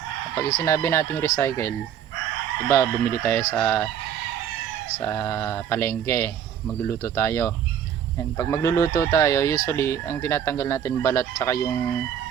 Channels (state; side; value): quieter; left; 9.2 dB